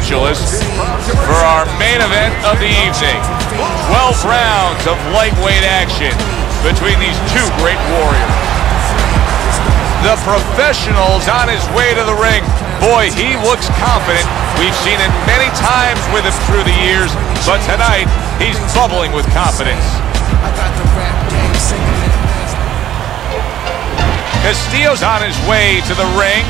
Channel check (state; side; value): quieter; left; 11.8 dB